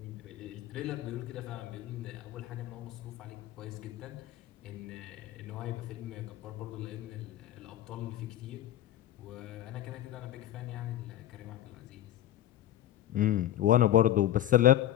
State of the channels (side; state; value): right; quieter; 12.5 dB